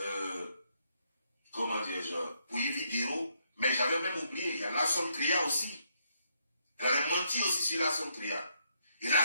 pour Yves Guéraud, mais j'avais même oublié, il y a Lasson Tria aussi. Elle avait menti aussi sur Lasson Tria. Et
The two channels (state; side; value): inverted; both; correlation -0.75